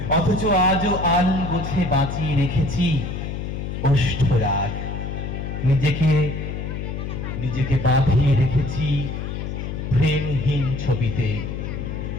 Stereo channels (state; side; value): noise; left; hum, 5 dB below the sound